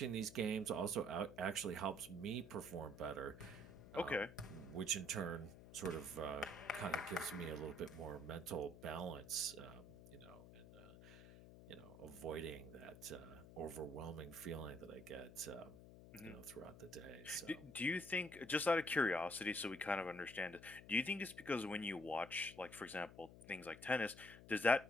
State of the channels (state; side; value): noise; left; hum, 16 dB below the sound